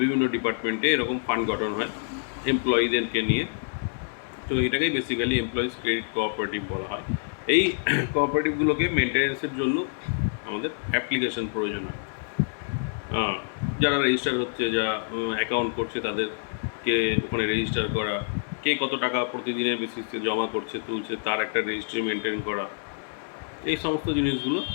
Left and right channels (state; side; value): silent; right; 60 dB below the other